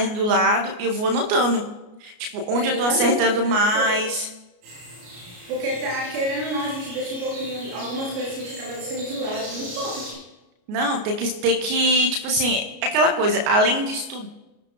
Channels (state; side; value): late; left; 33 ms